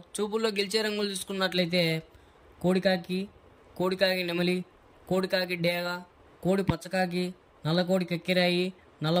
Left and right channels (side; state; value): both; identical; correlation 1.00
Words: చూపుల్లో గెలిచే రంగులు చూసుకున్నట్లయితే కోడికాకి నెమలి, కోడికాకి డేగ, కోడి పచ్చకాకి, నల్ల కోడి కక్కిరాయి,